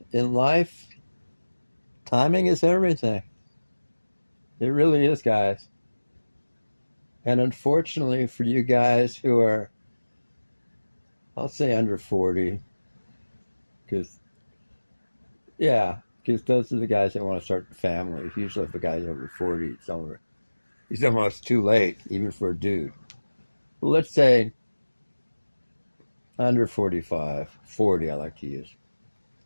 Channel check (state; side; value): inverted; both; correlation -1.00